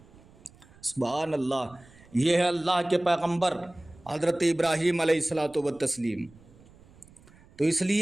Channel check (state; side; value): noise; right; rumble, 25 dB below the sound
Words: سبحان اللہ۔ یہ ہے اللہ کے پیغمبر حضرت ابراہیم علیہ الصلوۃ والتسلیم۔ تو اس